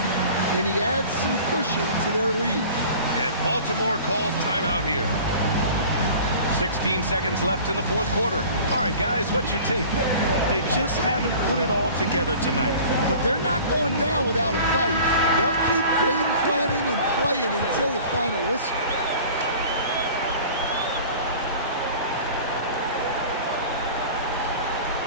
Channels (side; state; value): both; inverted; correlation -0.43